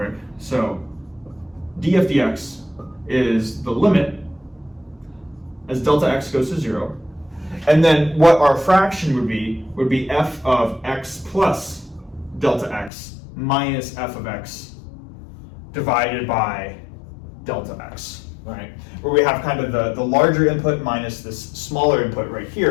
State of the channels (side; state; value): right; drops out; at 12.9 s